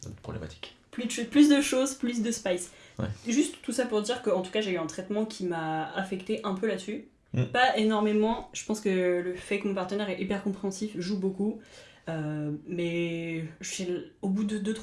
problématique. Plus de choses, plus de spice. Ouais. Juste tout ça pour dire qu'en tout cas j'ai eu un traitement qui m'a affecté un peu là-dessus. Pas énormément, je pense que le fait que mon partenaire est hyper compréhensif joue beaucoup. Mais au bout de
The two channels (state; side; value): identical; both; correlation 1.00